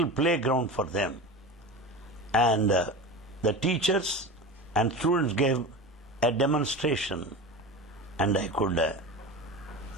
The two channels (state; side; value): normal; both; correlation 0.29